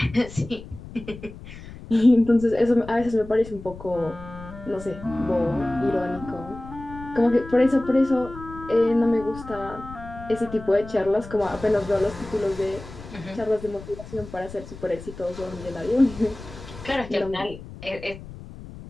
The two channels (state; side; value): noise; left; rumble, 15 dB below the sound